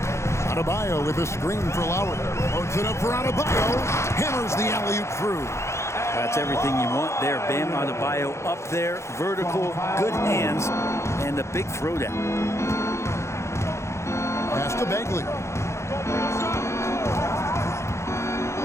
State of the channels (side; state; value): right; late; 0.13 ms